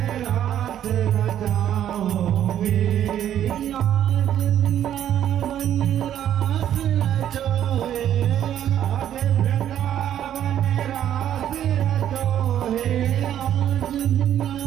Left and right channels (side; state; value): left; quieter; 10.7 dB